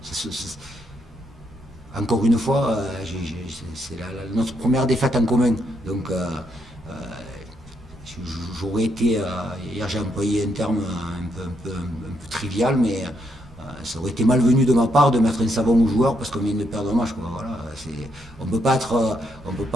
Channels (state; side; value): normal; both; correlation 0.76